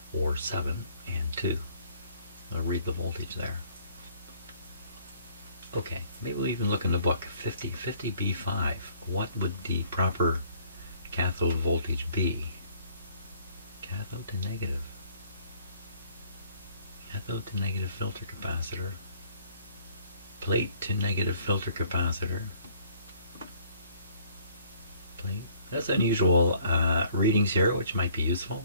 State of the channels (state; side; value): inverted; both; correlation -0.60